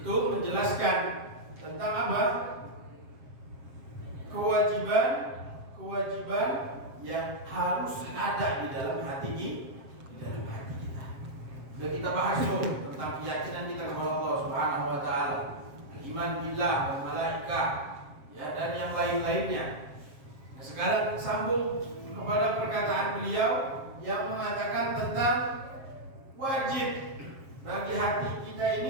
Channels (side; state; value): left; late; 7.5 ms